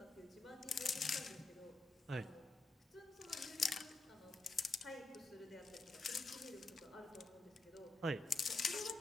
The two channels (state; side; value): quieter; right; 3.0 dB